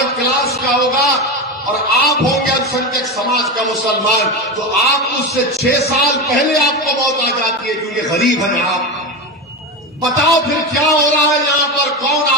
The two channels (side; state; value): both; normal; correlation 0.18